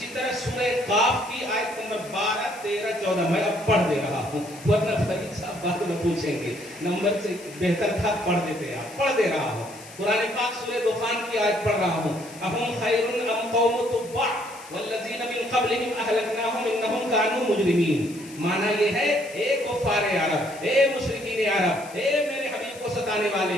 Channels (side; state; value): left; noise; hiss, 19 dB below the sound